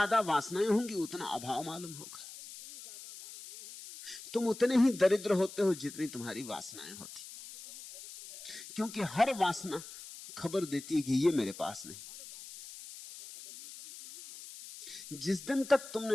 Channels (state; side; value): noise; left; hiss, 14 dB below the sound